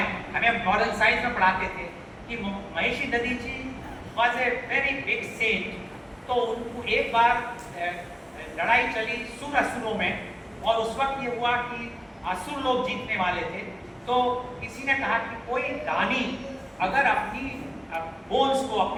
हमें मॉरल साइंस में पढ़ाते थे कि Maharshi Dadhichi was a very big saint. तो उनको एक बार लड़ाई चली सुर असुरों में, और उस वक्त ये हुआ कि असुर लोग जीतने वाले थे। तो किसी ने कहा कि कोई दानी अगर अपनी बोन्स को,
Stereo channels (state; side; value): identical; both; correlation 1.00